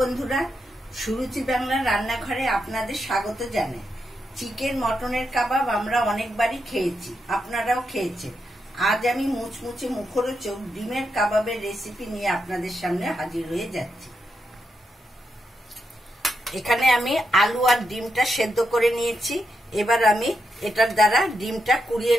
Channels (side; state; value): both; normal; correlation 0.84